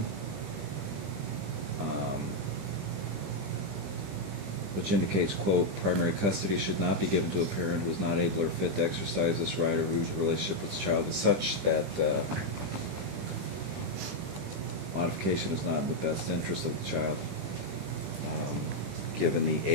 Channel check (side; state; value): left; late; 20 ms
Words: which indicates, quote, primary custody should not be given to a parent who is not able or fit to exercise this right or whose relationship with the child is such that modification is not in the best interest of the child. Given the